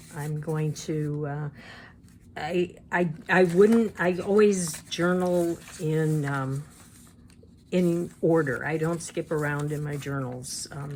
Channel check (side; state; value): both; identical; correlation 1.00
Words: I'm going to, I always journal in order. I don't skip around in my journals.